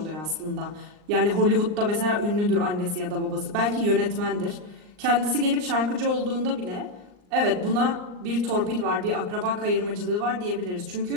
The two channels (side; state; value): left; late; 39 ms